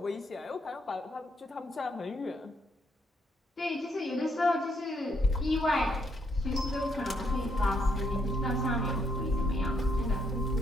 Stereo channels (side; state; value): both; normal; correlation 0.74